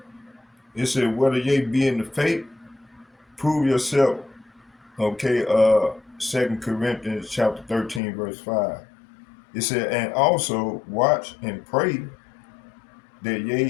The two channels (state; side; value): drops out; right; at 8.0 s